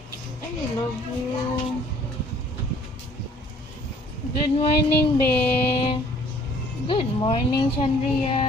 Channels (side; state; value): both; normal; correlation 0.57